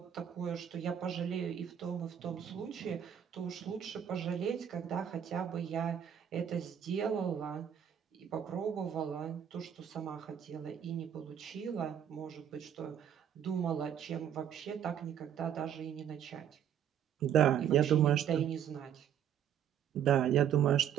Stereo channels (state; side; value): quieter; left; 9.2 dB